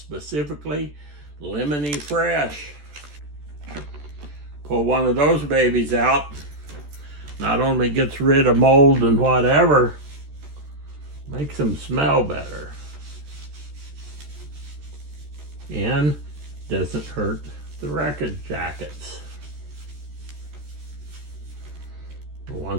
Lemony Fresh. Pull one of those babies out. Not only gets rid of mold and whatever, makes them smell better. And doesn't hurt the record jackets.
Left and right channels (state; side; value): late; left; 14 ms